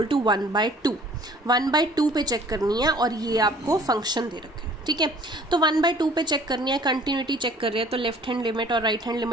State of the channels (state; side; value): normal; both; correlation 0.53